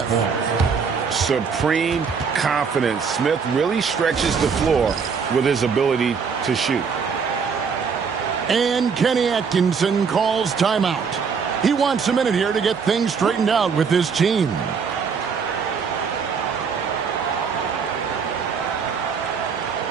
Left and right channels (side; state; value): left; quieter; 5.9 dB